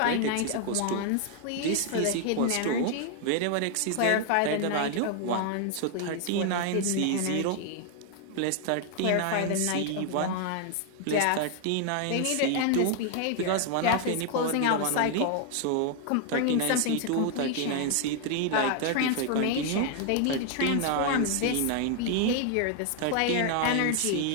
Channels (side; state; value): both; different; correlation 0.00